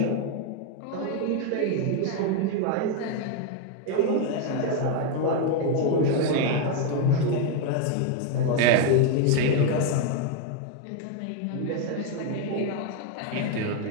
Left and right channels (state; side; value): different; both; correlation 0.01